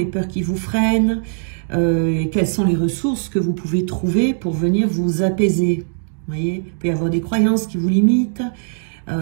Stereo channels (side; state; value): left; silent; digital silence